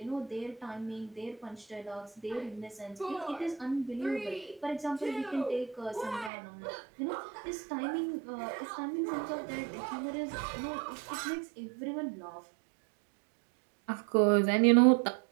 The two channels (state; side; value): drops out; left; at 6.3 s